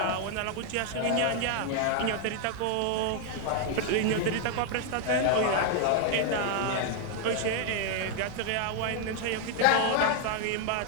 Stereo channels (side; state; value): both; different; correlation 0.00